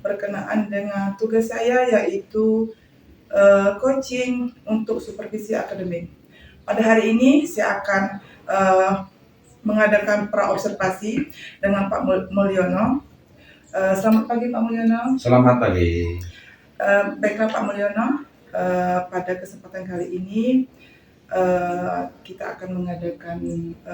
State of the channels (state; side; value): identical; both; correlation 1.00